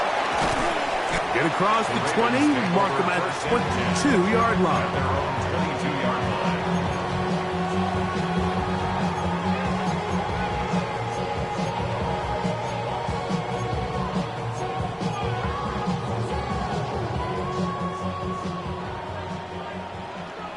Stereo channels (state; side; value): identical; both; correlation 1.00